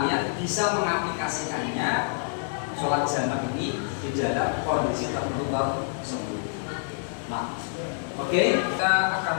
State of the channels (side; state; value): right; silent; 60 dB below the other